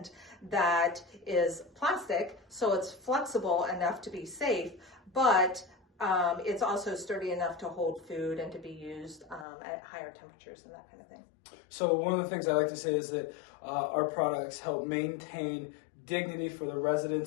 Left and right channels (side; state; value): right; drops out; at 9.5 s